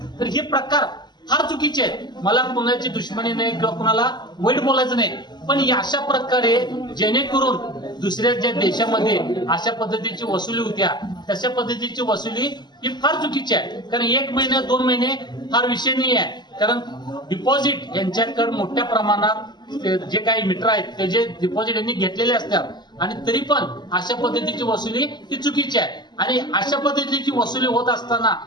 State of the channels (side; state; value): right; late; 0.21 ms